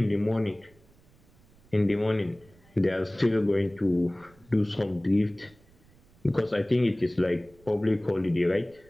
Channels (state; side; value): noise; right; rumble, 28 dB below the sound